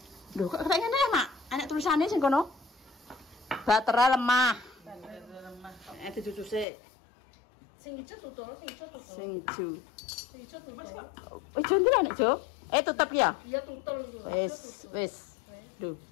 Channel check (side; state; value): right; drops out; at 6.7 s